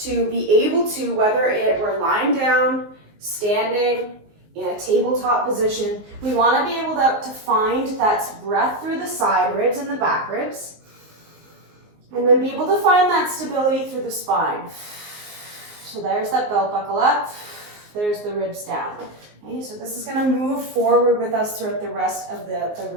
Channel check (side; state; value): left; late; 19 ms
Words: be able to, whether we're lying down, standing, in a tabletop position, we want to be able to find that breath through the side ribs and the back ribs, and then be able to find that stability through the spine. So there's that belt buckle up, there's the ribs down. Okay, so this is going to move forward with us throughout the rest of the